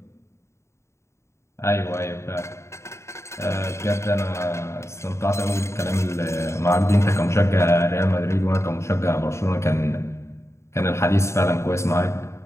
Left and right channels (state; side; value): late; right; 0.13 ms